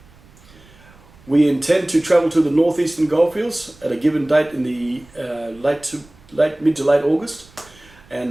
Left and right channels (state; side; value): noise; right; rumble, 26 dB below the sound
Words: We intend to travel to the northeastern Goldfields at a given date in the mid to late August,